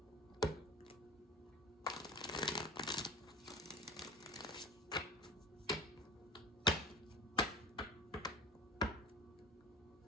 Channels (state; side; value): normal; both; correlation 0.36